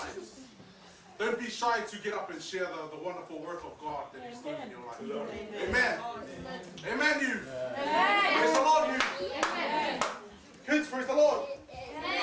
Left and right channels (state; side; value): identical; both; correlation 1.00